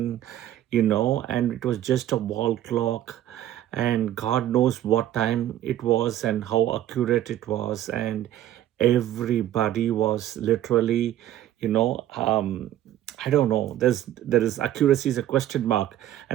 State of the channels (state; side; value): quieter; left; 12.5 dB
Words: and it was just a wall clock, and God knows what time it was and how accurate it was, and everybody was literally, you know, um, I don't know. There is accuracy is a question mark,